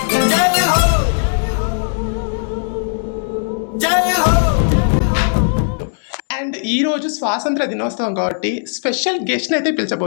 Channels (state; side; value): silent; right; digital silence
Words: అండ్ ఈరోజు స్వాతంత్ర దినోత్సవం కాబట్టి స్పెషల్ గెస్ట్ని అయితే